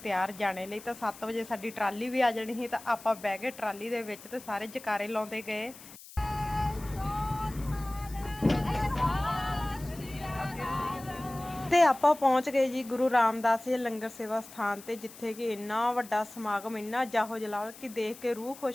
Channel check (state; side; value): noise; left; hiss, 18 dB below the sound